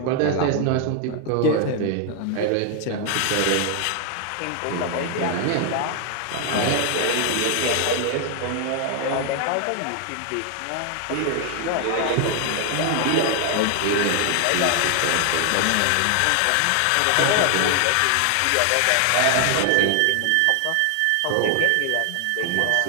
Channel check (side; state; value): both; different; correlation 0.00